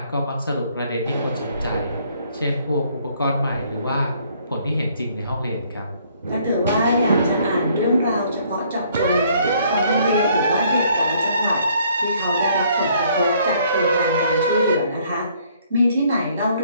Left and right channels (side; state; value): both; inverted; correlation -0.64